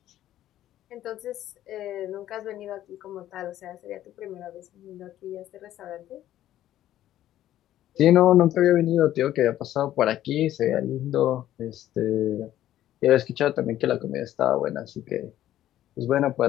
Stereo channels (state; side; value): quieter; right; 12.9 dB